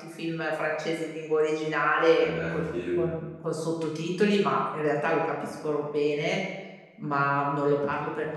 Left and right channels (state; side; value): identical; both; correlation 1.00